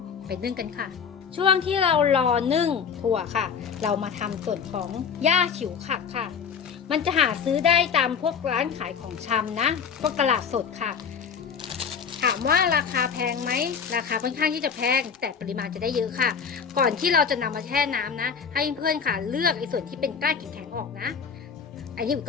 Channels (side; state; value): right; quieter; 6.7 dB